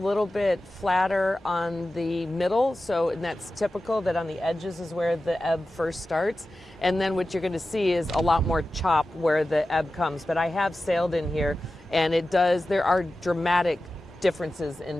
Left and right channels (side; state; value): both; normal; correlation 0.94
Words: bit flatter on the middle, and that's typical that on the edges is where the ebb first starts. And then what you're going to see is a lot more chop where the ebb comes. But I have sailed in here, and there are dramatic differences